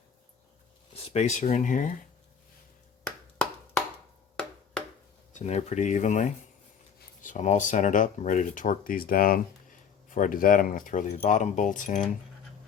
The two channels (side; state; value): right; quieter; 7.1 dB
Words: spacer in here. It's in there pretty evenly. So I'm all centered up. I'm ready to torque these down. Before I do that, I'm going to throw the bottom bolts in